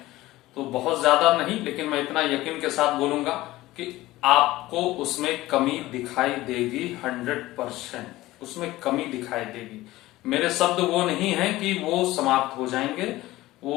तो बहुत ज्यादा नहीं, लेकिन मैं इतना यकीन के साथ बोलूंगा कि आपको उसमें कमी दिखाई देगी। 100% उसमें कमी दिखाई देगी। मेरे शब्द वो नहीं है कि वो समाप्त हो जाएंगे,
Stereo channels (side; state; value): right; quieter; 17.4 dB